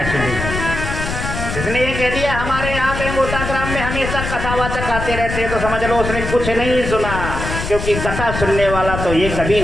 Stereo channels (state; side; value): noise; left; rumble, 5 dB below the sound